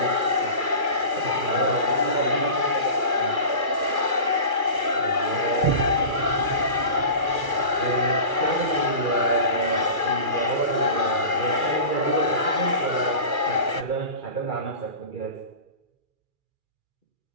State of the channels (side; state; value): left; late; 2.4 ms